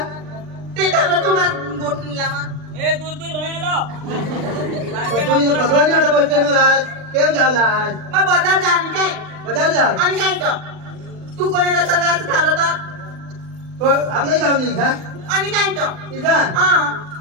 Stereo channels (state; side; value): late; left; 39 ms